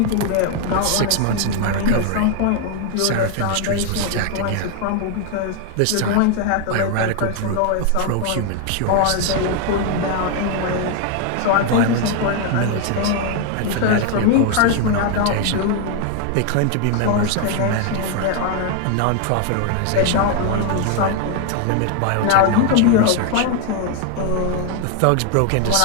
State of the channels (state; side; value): different; both; correlation 0.01